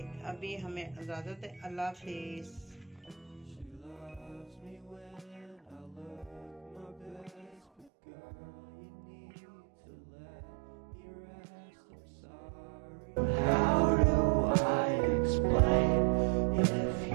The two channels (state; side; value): drops out; left; at 7.9 s